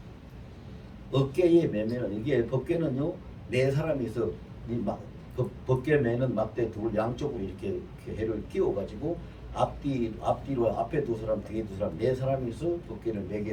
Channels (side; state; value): both; identical; correlation 1.00